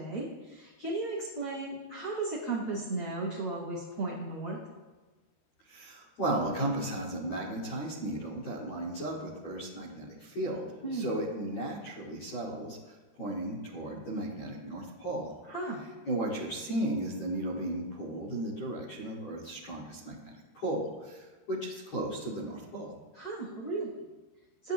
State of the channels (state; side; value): late; right; 13 ms